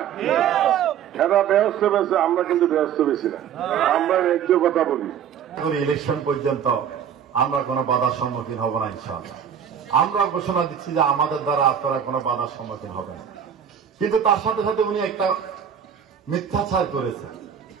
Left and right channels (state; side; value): quieter; left; 8.5 dB